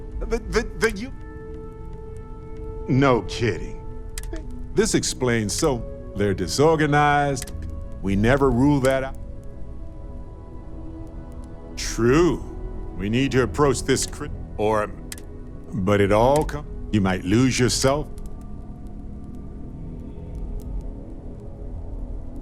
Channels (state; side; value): identical; both; correlation 1.00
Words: you. No kidding. This explains so they're disorganized. We never rule that out. True. We need to approach this but it all comes. You might lose yourself.